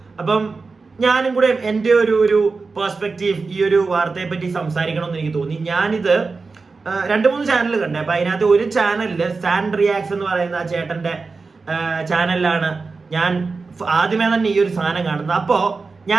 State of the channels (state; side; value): quieter; left; 4.2 dB